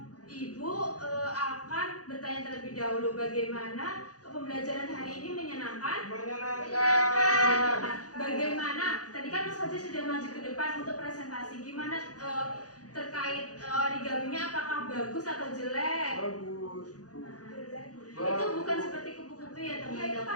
Ibu akan bertanya terlebih dahulu bagaimana pembelajaran hari ini menyenangkan? Bagaimana? Tadi kan Mas Fajar sudah maju ke depan untuk presentasi. Gimana terkait origaminya? Apakah bagus atau jelek? Bagus. Itu bukan seperti kupu-kupu ya teman-teman. Itu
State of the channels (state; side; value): late; right; 0.68 ms